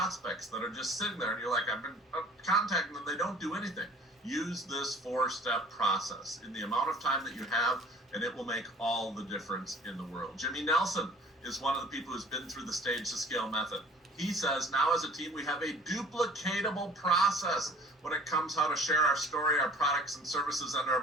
that are just sitting there and you're like, I've been contacting them, they don't do anything, use this 4-step process in the amount of time that you have, and it will make all the difference in the world. Jimmy Nelson is one of the people who's been through the Stage to Scale method. He says, now as a team, we have a duplicatable process when it comes how to share our story, our products and services, and our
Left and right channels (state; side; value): normal; both; correlation 0.50